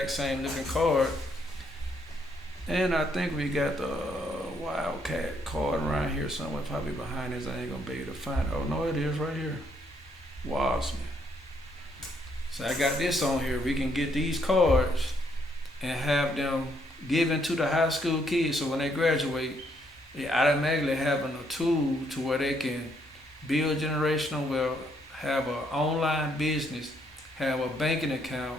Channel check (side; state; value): both; normal; correlation 0.72